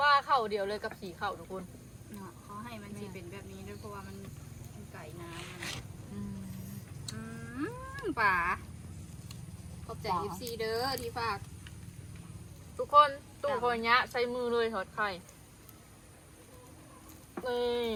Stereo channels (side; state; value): both; identical; correlation 1.00